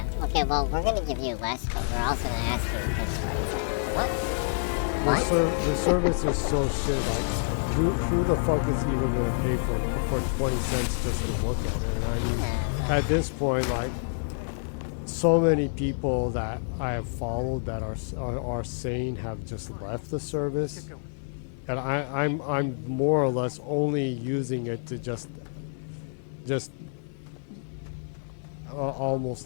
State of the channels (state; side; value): silent; right; digital silence